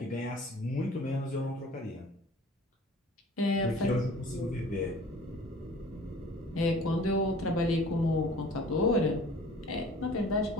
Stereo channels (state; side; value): normal; both; correlation 0.47